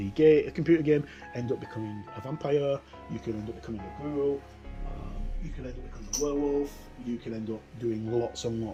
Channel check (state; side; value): identical; both; correlation 1.00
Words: computer game, end up becoming a vampire, you can end up becoming a ghoul, you can end up becoming a werewolf, you can end up doing lots and